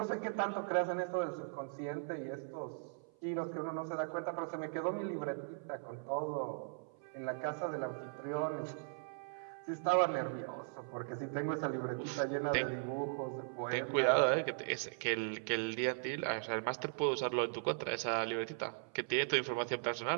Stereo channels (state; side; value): silent; left; 52 dB below the other